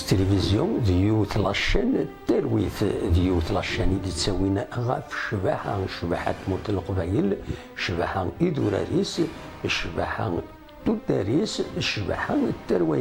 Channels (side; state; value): both; identical; correlation 1.00